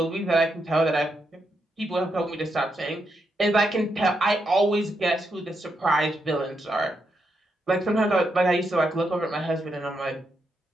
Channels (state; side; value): normal; both; correlation 0.81